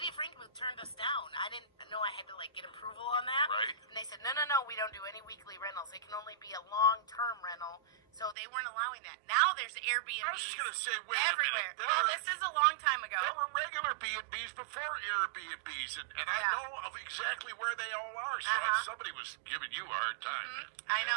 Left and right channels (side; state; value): left; drops out; at 8.3 s